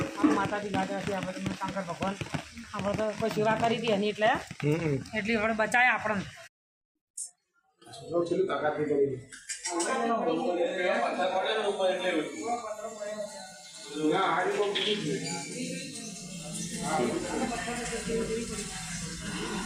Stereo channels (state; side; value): identical; both; correlation 1.00